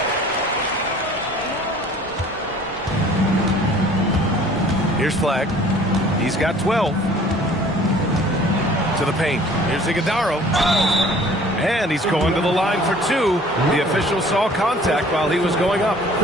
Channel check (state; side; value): normal; both; correlation 0.52